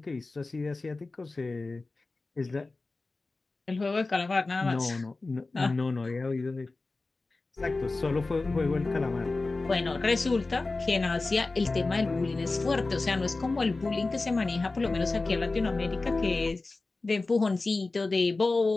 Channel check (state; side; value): quieter; right; 3.5 dB